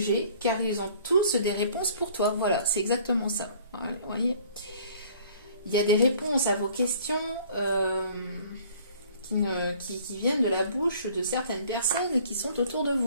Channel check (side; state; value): both; inverted; correlation -0.54